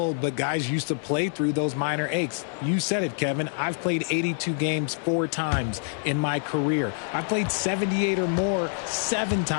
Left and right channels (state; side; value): silent; right; digital silence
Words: but guys used to play through those minor aches. You said it, Kevin. I've played 82 games 4 times in my career. I've played 78 or more 7